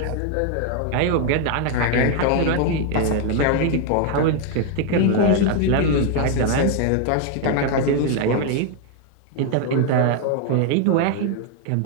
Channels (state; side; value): different; both; correlation 0.00